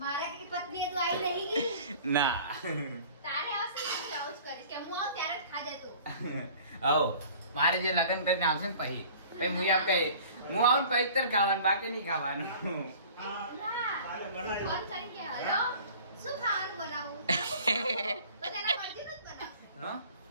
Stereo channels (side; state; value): both; inverted; correlation -0.46